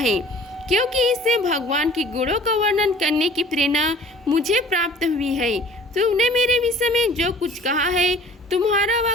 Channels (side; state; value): both; normal; correlation 0.49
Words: क्योंकि इससे भगवान के गुणों का वर्णन करने की प्रेरणा मुझे प्राप्त हुई है। तुमने मेरे विषय में जो कुछ कहा है, तुम्हारा वह